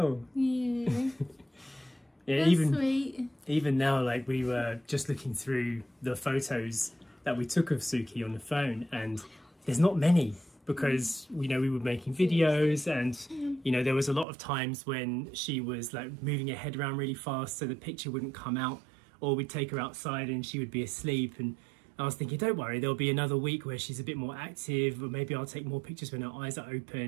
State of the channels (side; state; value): left; drops out; at 14.2 s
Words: Yeah. Yeah, That's sweet. Even now, like, we were just looking through the photos that we took of Suki on the phone, and there's not many because, you know, we were making videos, and, you know, there was a lot of times when she was like moving her head around really fast so the picture wouldn't come out, or we'd take her outside and she would be asleep. And I was thinking, don't worry, there'll be another week where she's a bit more active, or maybe I'll take more pictures when her eyes are